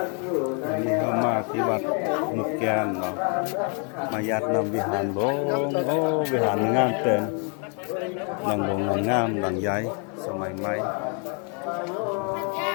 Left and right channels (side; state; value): right; quieter; 39.3 dB